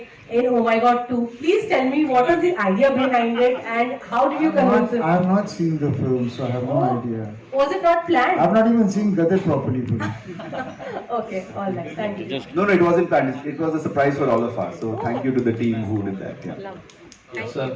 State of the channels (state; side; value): identical; both; correlation 1.00